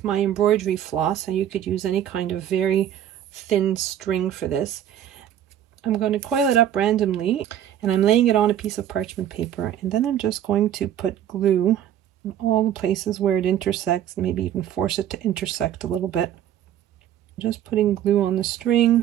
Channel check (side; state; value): left; quieter; 10.8 dB